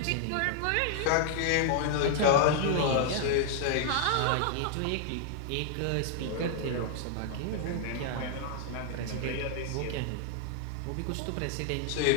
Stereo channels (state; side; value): different; both; correlation 0.00